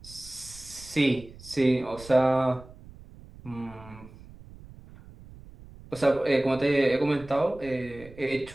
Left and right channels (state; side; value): noise; right; rumble, 19 dB below the sound